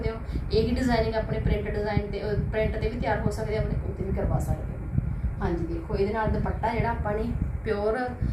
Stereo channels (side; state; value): both; identical; correlation 1.00